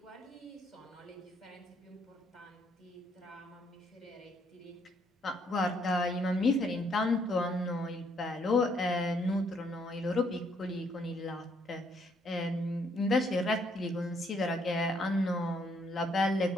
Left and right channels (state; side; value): normal; both; correlation 0.70